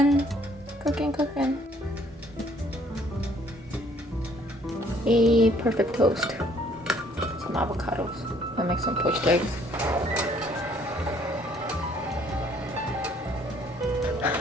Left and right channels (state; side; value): normal; both; correlation 0.62